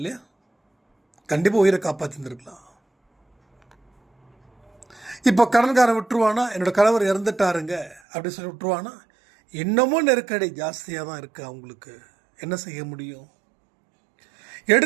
கண்டிப்பாக உயிரை காப்பாற்றிருக்கலாம். இப்போ கடன்காரன் விட்டுருவானா, என்னோடய கணவர் இறந்துட்டாருங்க அப்படின்னு சொல்லி விட்டுருவானா? இன்னமும் நெருக்கடி ஜாஸ்தியாக தான் இருக்குது. அவங்களுக்கு என்ன செய்ய முடியும்?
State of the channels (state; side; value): drops out; left; at 8.0 s